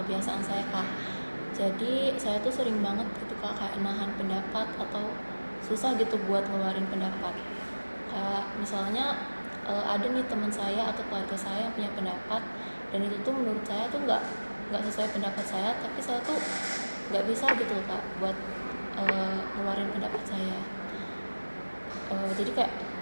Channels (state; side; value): inverted; both; correlation -1.00